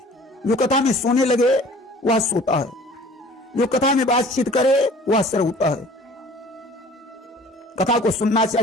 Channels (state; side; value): normal; both; correlation 0.49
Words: जो कथा में सोने लगे वह सोता है, जो कथा में बातचीत करे वह श्रोता है। कथा को सुनना